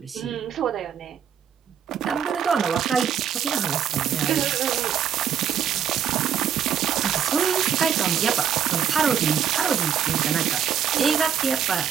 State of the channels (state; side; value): quieter; left; 8.5 dB